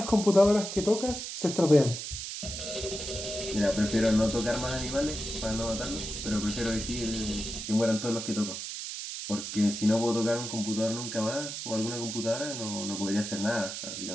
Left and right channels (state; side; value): noise; right; hiss, 6 dB below the sound